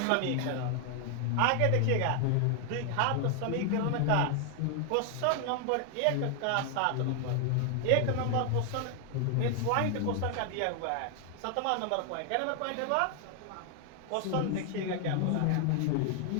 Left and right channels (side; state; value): both; different; correlation 0.00